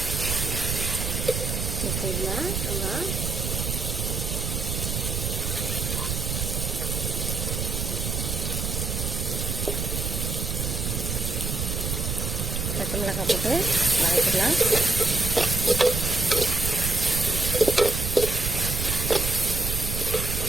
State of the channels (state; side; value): noise; right; rumble, 2 dB below the sound